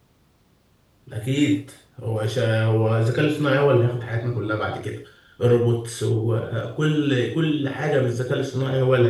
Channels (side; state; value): both; identical; correlation 1.00